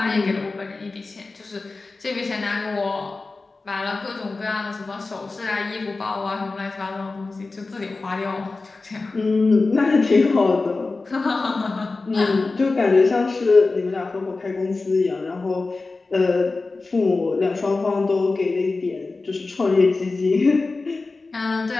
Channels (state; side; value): quieter; right; 3.7 dB